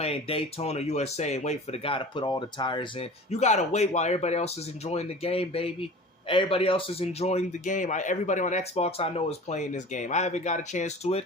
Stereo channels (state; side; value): normal; both; correlation 0.39